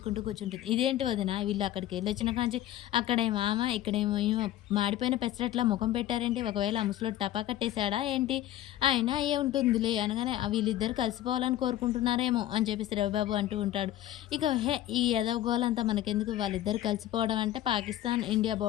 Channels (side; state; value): right; quieter; 13.3 dB